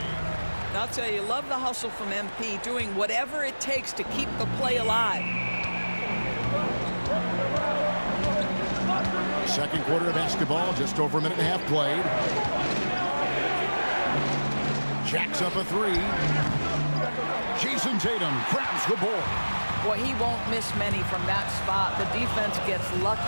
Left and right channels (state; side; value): inverted; both; correlation -1.00